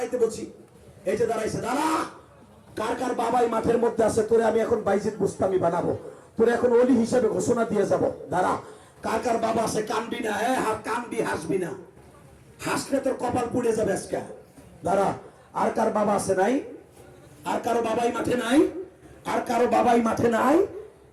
বলছি, এই যে দাঁড়াইছে, দাঁড়া। কার কার বাবাই মাঠের মধ্যে আছে, তোরে আমি এখন বাইজিদ বুস্তামি বানাবো, তোরে এখন ওলি হিসেবে ঘোষণা দিয়ে যাব, দাঁড়া। কার কার বাবা আছে, কানবি না, কানবি, হাসবি না, হাসলে তোর কপাল পুড়ে যাবে আজকে, দাঁড়া। আর কার বাবা আছে নাই? আর কারো বাবাই মাঠে নাই? আর কারো বাবাই মাঠে নাই?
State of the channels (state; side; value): identical; both; correlation 1.00